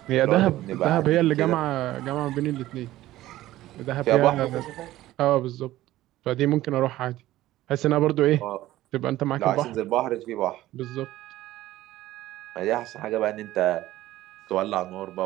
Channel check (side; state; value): left; quieter; 15.5 dB